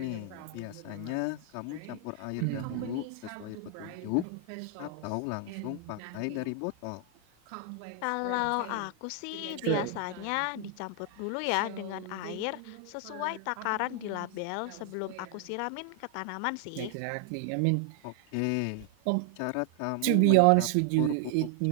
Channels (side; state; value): both; different; correlation 0.00